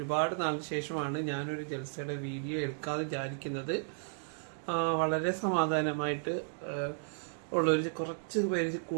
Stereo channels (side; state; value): left; silent; digital silence